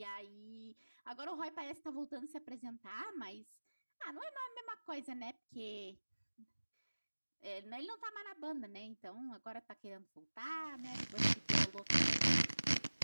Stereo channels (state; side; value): inverted; both; correlation -1.00